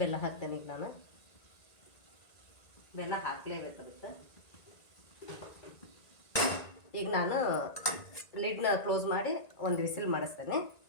ಬೆಲ್ಲ ಹಾಕ್ತೇನೆ. ಈಗ ನಾನು ಬೆಲ್ಲ ಹಾಕಲೇಬೇಕಾಗುತ್ತೆ. ಈಗ ನಾನು ಲಿಡ್ನ ಕ್ಲೋಸ್ ಮಾಡಿ ಒಂದು ವಿಸಿಲ್ ಮಾಡಿಸ್ತೇನೆ.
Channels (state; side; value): late; right; 1.9 ms